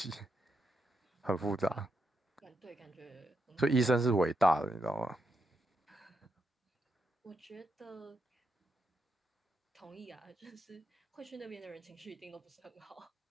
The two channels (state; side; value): normal; both; correlation 0.82